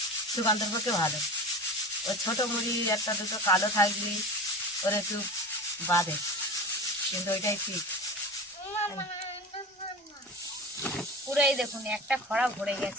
সুকান্তর পক্ষে ভালো। ও ছোট মুড়ি 1-2 কালো থাকলি ওর একটু বাঁধে, কিন্তু ওইটাই ঠিক। পুরো এই দেখুন একটা খড়া ভরে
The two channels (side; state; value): both; normal; correlation 0.32